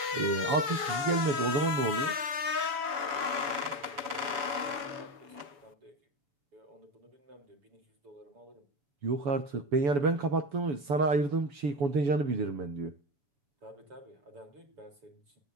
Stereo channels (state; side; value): late; left; 7.0 ms